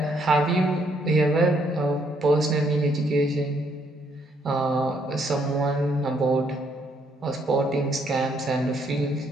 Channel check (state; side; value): normal; both; correlation 0.71